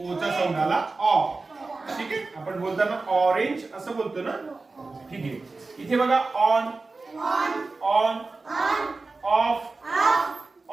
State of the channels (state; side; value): quieter; left; 3.7 dB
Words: चा साऊंड आला ऑ. ठीक आहे, आपण बोलताना ऑरेंज असं बोलतो ना. ठीक आहे. इथे बघा ऑन, ऑन, ऑफ,